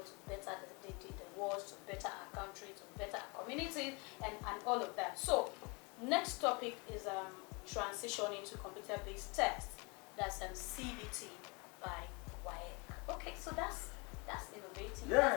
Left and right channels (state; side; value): quieter; right; 29.8 dB